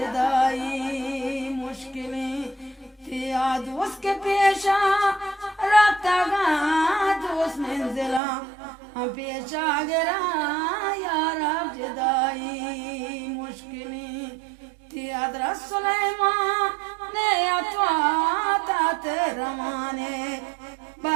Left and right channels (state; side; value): drops out; left; at 8.2 s